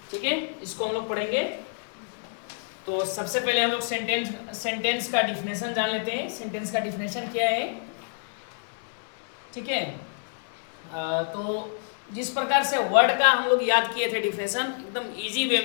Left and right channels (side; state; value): right; silent; 60 dB below the other